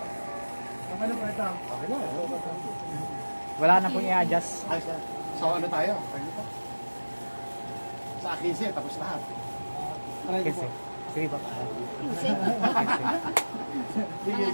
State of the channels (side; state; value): both; inverted; correlation -1.00